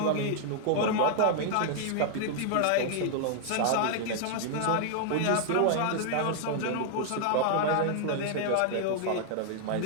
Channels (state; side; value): different; both; correlation -0.01